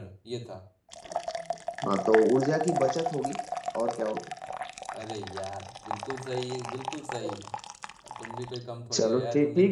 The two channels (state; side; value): identical; both; correlation 1.00